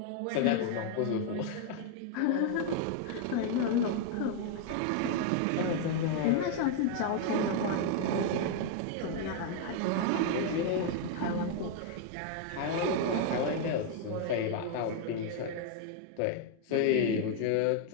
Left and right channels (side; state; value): both; different; correlation 0.00